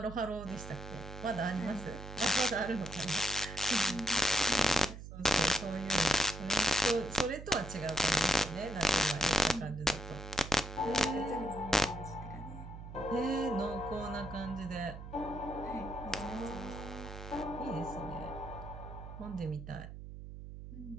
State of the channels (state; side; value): noise; right; hum, 11 dB below the sound